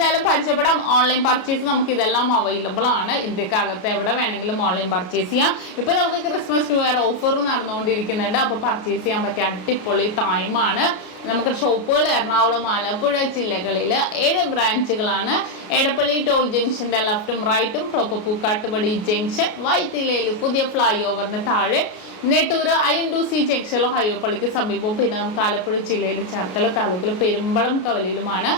പരിചയപ്പെടാം. ഓൺലൈൻ പർച്ചേസ് നമുക്ക് ഇതെല്ലാം അവൈലബിൾ ആണ്. ഇന്ത്യക്കകത്ത് എവിടെ വേണമെങ്കിലും ഓൺലൈൻ പർച്ചേസ് ചെയ്യാം. ഇപ്പോൾ നമുക്ക് ക്രിസ്മസ് ന്യൂ ഇയർ ഓഫർ നടന്നുകൊണ്ടിരിക്കുന്നുണ്ട്. അപ്പോൾ പർച്ചേസ് ചെയ്യാൻ പറ്റിയ അടിപൊളി ടൈമാണ്. നമുക്ക് ഷോപ്പുകൾ എറണാകുളം, ആലപ്പുഴ ജില്ലകളിൽ 7 ബ്രാഞ്ചുകളാണ്. എടപ്പള്ളി ടോൾ ജംഗ്ഷൻ്റെ ലെഫ്റ്റും റൈറ്റും, പ്രോപ്പർ പൂക്കാട്ടുപടി ജംഗ്ഷൻ, വൈത്തിലയിൽ പുതിയ ഫ്ലൈ ഓവറിന് താഴെ, നെട്ടൂര് INDC ജംഗ്ഷനിലോ ഹൈവേപ്പള്ളിക്ക് സമീപവും, പിന്നെ നമുക്ക് ആലപ്പുഴ ജില്ലയിൽ ചേർത്തല താലൂക്കിൽ പെരുമ്പളം കവലയിലുമാണ്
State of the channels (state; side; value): late; right; 33 ms